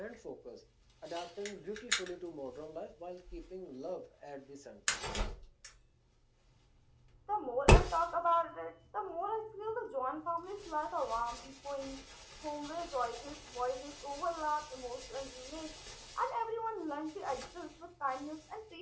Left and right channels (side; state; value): both; identical; correlation 1.00